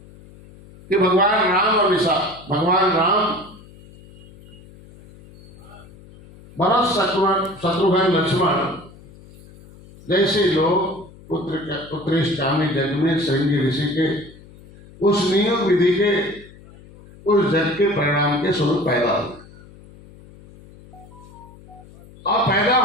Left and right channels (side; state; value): left; noise; hum, 22 dB below the sound